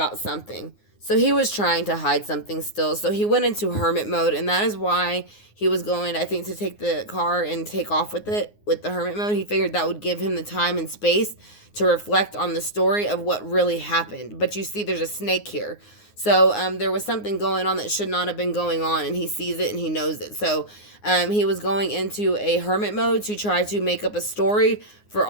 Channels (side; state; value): right; late; 9.6 ms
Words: something. So he was trying to hide something still. So he went into hermit mode, and that is why he was going, I think, to take the car and take off with it, with the hermit mode. He figured that would give him the time and space to reflect on the story of what really happened. But you see there's a snake here. So there was something going on that should not have been going on, and he sees it and he knows it. So he was going into a hermit mode to try to make up a story for